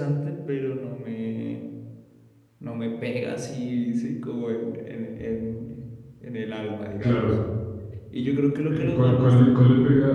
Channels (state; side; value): identical; both; correlation 1.00